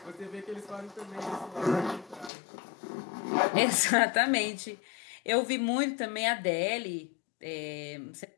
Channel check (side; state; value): right; drops out; at 2.3 s